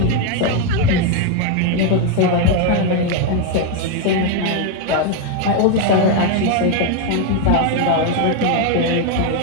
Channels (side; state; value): both; different; correlation 0.01